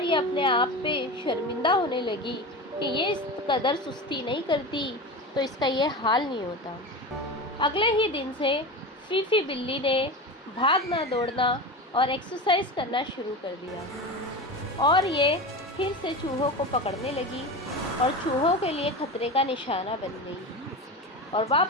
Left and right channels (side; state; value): both; normal; correlation 0.26